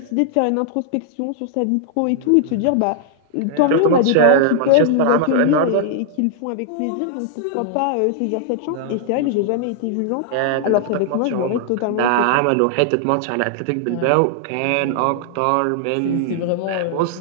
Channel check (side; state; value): both; different; correlation -0.01